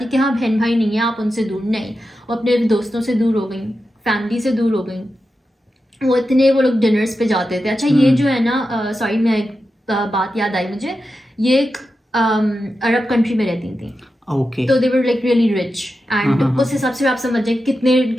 कि हाँ बहन भाई नहीं है, आप उनसे दूर नहीं, वो अपने दोस्तों से दूर हो गई, फैमिली से दूर हो गई। वो लोग डिनर्स पे जाते थे। अच्छा ये जो है ना, सॉरी मैं एक बात याद आई मुझे, ये एक अरब कंट्री में रहती थी, ओके, तो they were like really rich and उस हिसाब से आप समझ जाए कितने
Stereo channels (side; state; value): both; normal; correlation 0.90